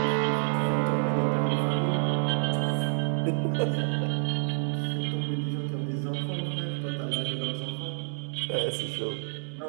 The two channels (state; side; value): silent; left; 59 dB below the other